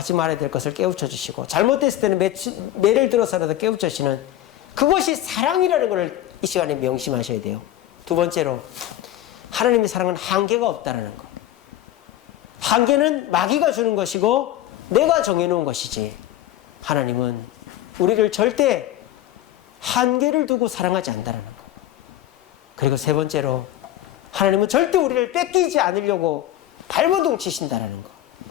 말아야 될 것을 깨우쳐 주시고, 잘못됐을 때는 매를 들어서라도 깨우쳐 주시는 그것이 사랑이라는 것을 이 시간에 명심하셔야 돼요. 2번째로, 하나님의 사랑은 한계가 없다는 것. 한계는 마귀가 주는 것이고 내가 정해놓은 것이지, 하나님은 우리를 절대 한계를 두고 사랑하지 않는다는 것. 그리고 3번째로, 하나님은 절대 우리를 뺏기지 않으려고 발버둥 치신다는 것.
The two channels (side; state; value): right; quieter; 13.3 dB